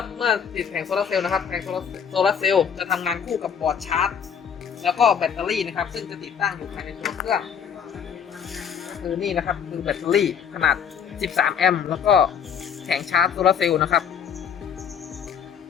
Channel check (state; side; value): quieter; right; 7.5 dB